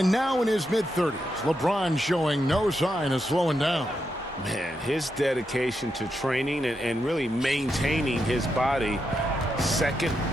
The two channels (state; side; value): normal; both; correlation 0.84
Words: now in his mid-30s, LeBron showing no sign of slowing down. Man, his dedication to training and really maintaining his body, second